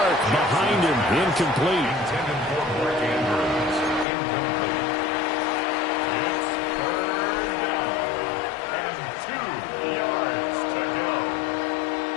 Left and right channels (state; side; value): drops out; right; at 4.0 s